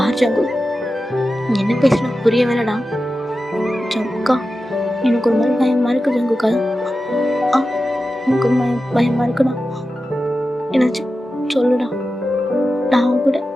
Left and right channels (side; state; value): both; normal; correlation 0.92